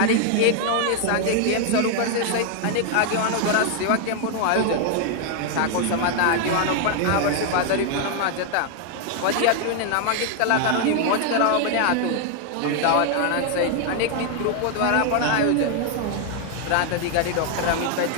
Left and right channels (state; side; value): different; both; correlation 0.00